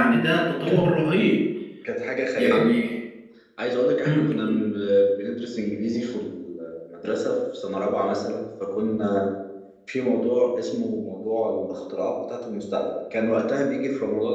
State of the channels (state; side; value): identical; both; correlation 1.00